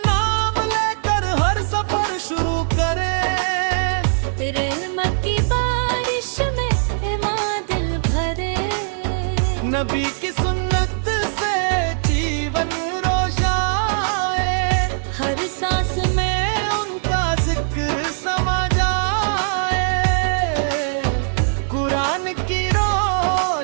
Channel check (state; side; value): silent; left; 60 dB below the other